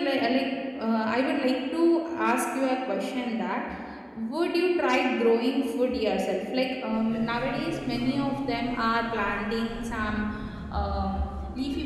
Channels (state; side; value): identical; both; correlation 1.00